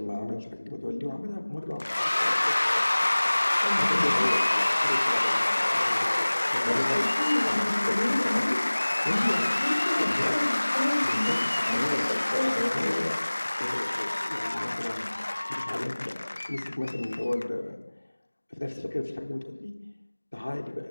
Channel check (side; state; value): both; inverted; correlation -1.00